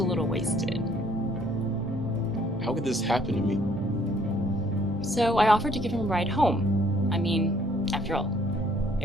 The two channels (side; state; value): both; normal; correlation 0.62